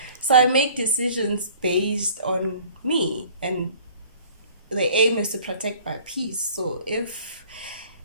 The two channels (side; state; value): both; inverted; correlation -0.51